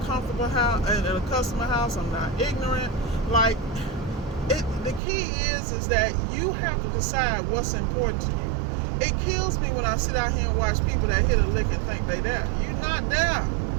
comfortable house, in a customer house, I'm not ignorant. Like, the key is that you have to decide what's important to you. It kills me when I sit out here and watch people that hit a lick and think they there. You're not there.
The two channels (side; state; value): left; drops out; at 5.0 s